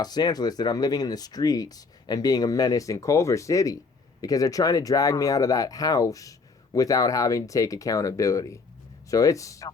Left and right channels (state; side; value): quieter; right; 4.3 dB